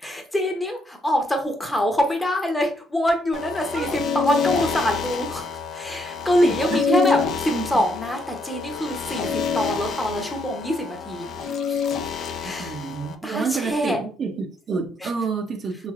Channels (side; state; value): both; normal; correlation 0.73